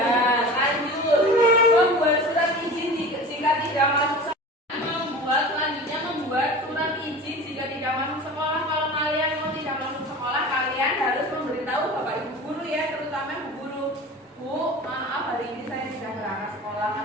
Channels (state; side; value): normal; both; correlation 0.36